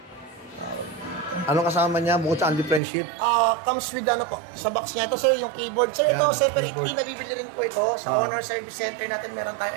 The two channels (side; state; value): left; drops out; at 2.8 s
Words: Anong kasama niya bukod sa only friendship? Comes with ano po, sa box niya. Ito sir, yung keyboard. Sir, Yan, ito separately keyboard. nabibili rin po ito. Sa Honor Service Center natin meron tayo